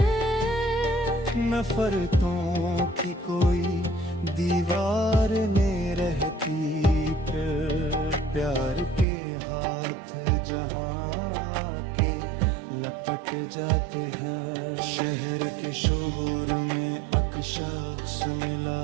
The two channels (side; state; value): left; drops out; at 9.1 s